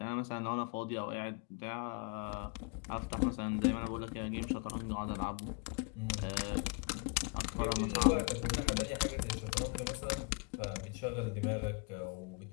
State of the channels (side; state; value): right; quieter; 33.5 dB